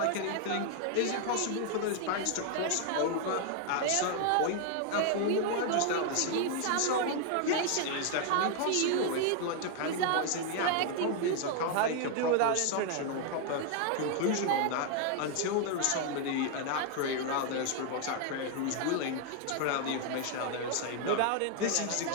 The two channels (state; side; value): different; both; correlation 0.00